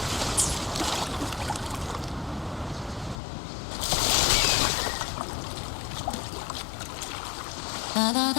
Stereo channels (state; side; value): drops out; right; at 3.2 s